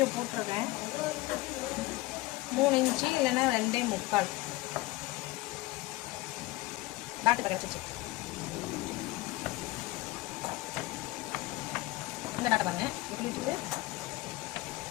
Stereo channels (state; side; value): quieter; right; 19.7 dB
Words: போட்டிருக்கேன். 3 இன்ச்சு இல்லைன்னா 2.25 டாட்டு கிடச்சிச்சு. இந்த டாட்டை பாருங்க, இப்படி வச்சுட்டு